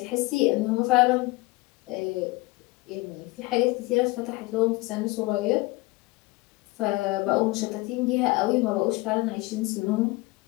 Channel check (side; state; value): right; quieter; 22.6 dB